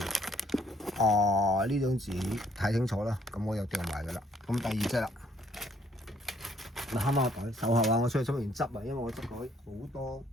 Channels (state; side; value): normal; both; correlation 0.66